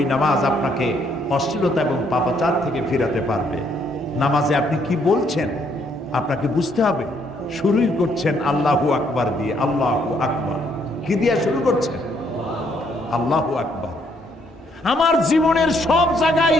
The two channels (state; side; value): normal; both; correlation 0.70